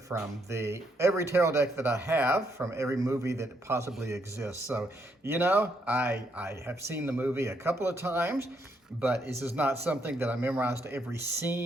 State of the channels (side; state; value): both; normal; correlation 0.75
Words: every tarot deck that I have, from every movie that possibly exists. So, you know, I have seen the movie a couple of times, but this is not something that I memorized every